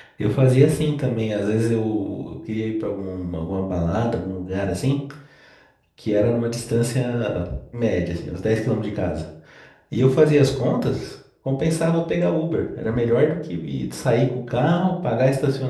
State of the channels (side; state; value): both; identical; correlation 1.00